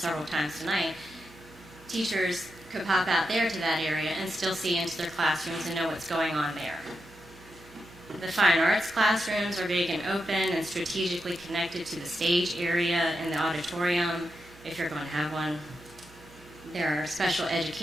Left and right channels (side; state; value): right; noise; hum, 22 dB below the sound